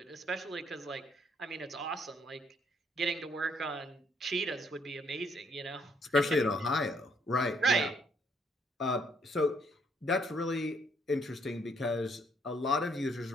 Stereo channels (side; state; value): both; normal; correlation 0.69